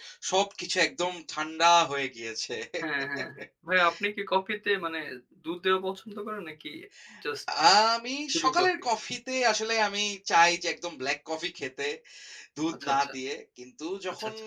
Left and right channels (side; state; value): both; identical; correlation 1.00